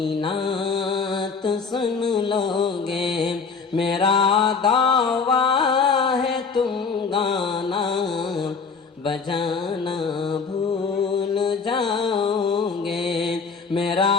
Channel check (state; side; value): quieter; right; 5.2 dB